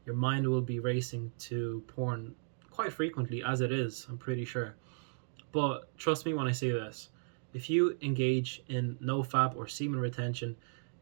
Your mind will be racing to porn quite frequently, as it is, I'm pretty sure. But trust me when I say this. If you engage in nofap or semen retention,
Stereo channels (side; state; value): left; silent; digital silence